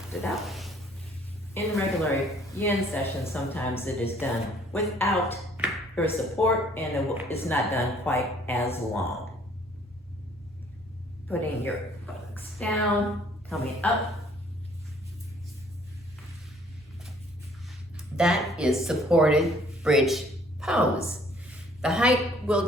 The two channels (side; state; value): both; normal; correlation 0.59